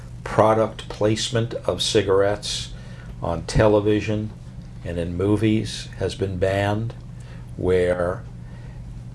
product placement of cigarettes on television and in movies has been banned, where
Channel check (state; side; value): identical; both; correlation 1.00